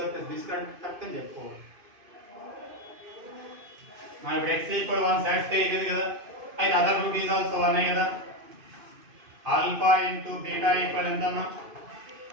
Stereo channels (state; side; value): late; left; 2.5 ms